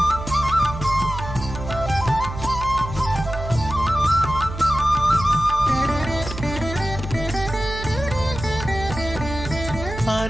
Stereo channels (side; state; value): right; noise; hum, 9 dB below the sound